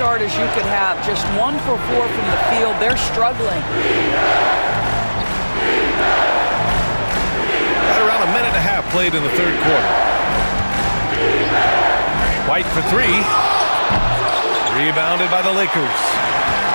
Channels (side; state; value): both; inverted; correlation -1.00